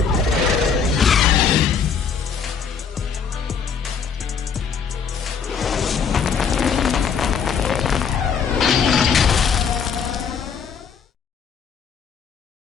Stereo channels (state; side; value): quieter; right; 6.4 dB